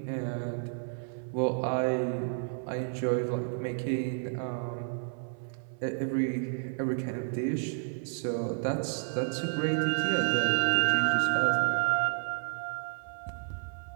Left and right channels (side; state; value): left; silent; 57 dB below the other